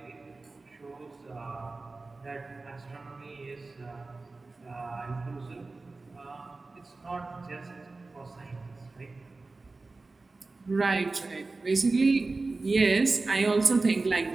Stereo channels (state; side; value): quieter; left; 3.6 dB